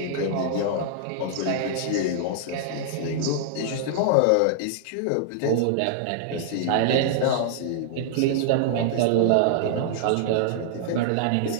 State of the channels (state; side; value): different; both; correlation -0.01